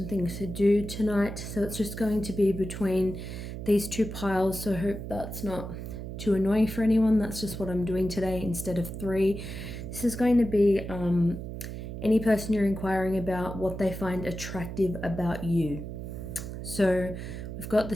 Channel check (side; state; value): right; noise; hum, 8 dB below the sound